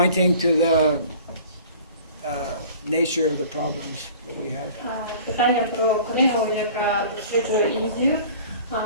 to the nature of the problems that we have. Питання про книгу, яка досліджує Індію,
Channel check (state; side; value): inverted; both; correlation -0.46